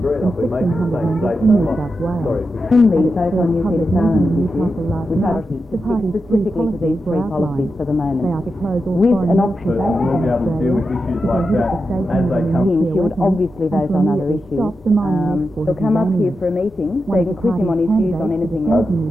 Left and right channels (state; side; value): normal; both; correlation 0.89